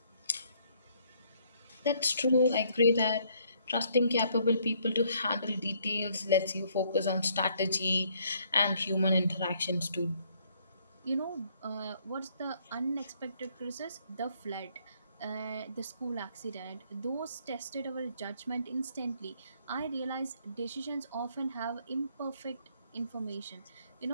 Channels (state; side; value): inverted; both; correlation -0.67